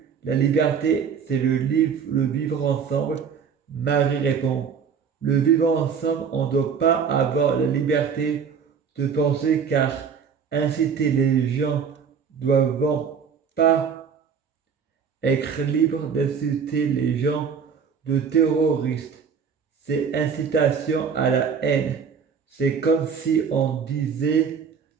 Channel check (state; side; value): quieter; left; 6.6 dB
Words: la liberté c'est le vivre ensemble. Marie répond le vivre ensemble, on ne doit pas avoir la liberté de penser car inciter les gens doivent pas être libres d'inciter les gens de terroristes. C'est incitation à la haine. C'est comme si on disait